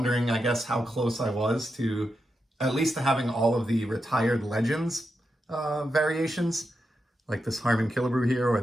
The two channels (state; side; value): normal; both; correlation 0.87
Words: I guess, how close I was to at least to having all of the retired legends variations, like this Harmon Killebrew here or